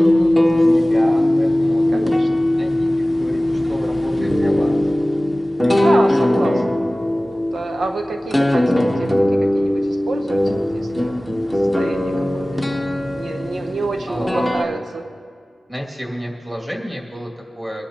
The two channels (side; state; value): both; normal; correlation 0.97